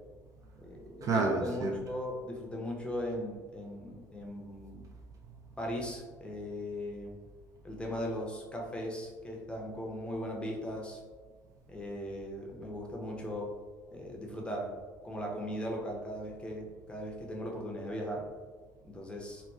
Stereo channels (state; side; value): normal; both; correlation 0.59